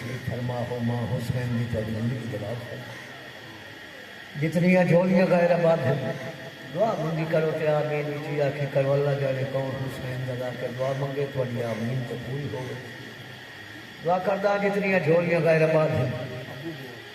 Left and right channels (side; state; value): both; identical; correlation 1.00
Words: فرما ہو ماں حسین دی تاری زندگی جلال فرما، جتنی جھولیاں غیر آباد ہیں دعا منگی کرو تے آمین وچی آکھی کرو اللہ جانے کون حسین دا کے دعا منگے تو علی آمین تو پوری ہو گئی۔ دعا کردہ جتنی جھولیاں غیر آباد ہیں